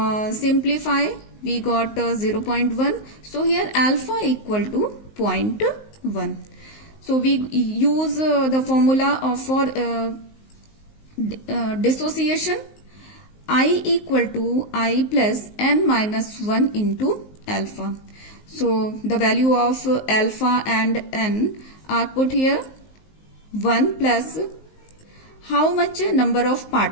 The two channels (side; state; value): right; late; 19 ms